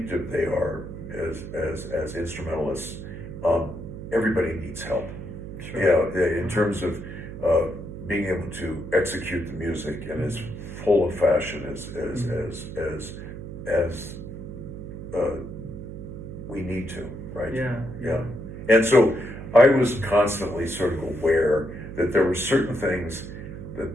they are as instrumentalists, everybody needs help. In terms of being able to execute the music and as full of fashion as we need to, right? And so I was constantly sort of aware that there were certain things that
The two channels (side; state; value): right; noise; hum, 10 dB below the sound